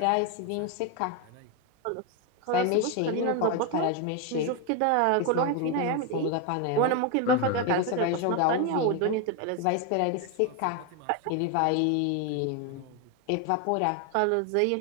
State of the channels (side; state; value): both; different; correlation 0.02